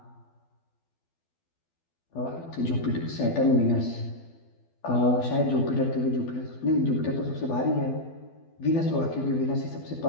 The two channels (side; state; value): right; late; 12 ms